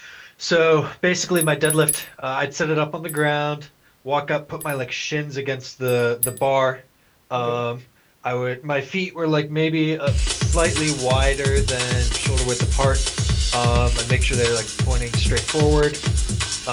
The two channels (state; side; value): identical; both; correlation 1.00